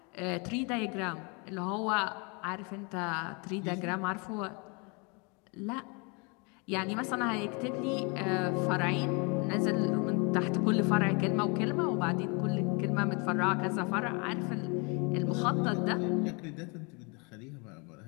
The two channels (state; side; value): quieter; right; 31.7 dB